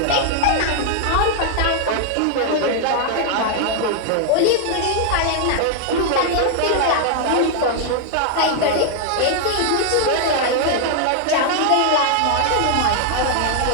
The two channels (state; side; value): different; both; correlation 0.00